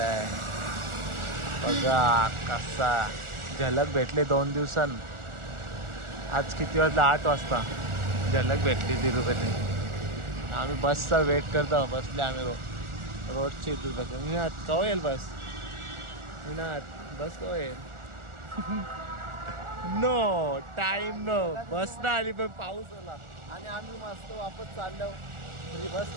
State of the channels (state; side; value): late; left; 1.4 ms